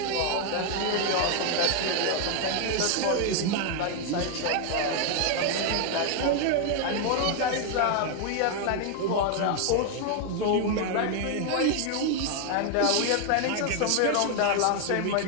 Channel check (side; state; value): both; different; correlation 0.00